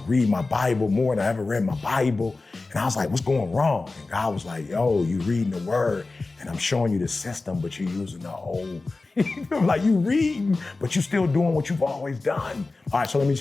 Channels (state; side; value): quieter; right; 3.5 dB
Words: read my Bible more than I ever read my Bible. And I was like, what's going wrong? And God was like, yo, you reading the word and I'm showing you the system, but you're using the old. Like, you reading, but you're still doing what you've always done. All right, so let me